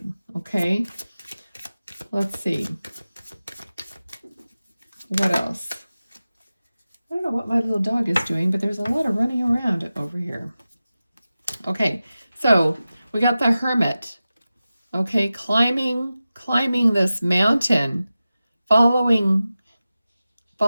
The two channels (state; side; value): inverted; both; correlation -0.95